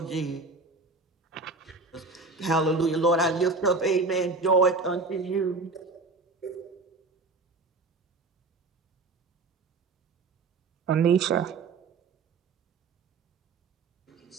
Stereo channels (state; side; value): quieter; left; 3.7 dB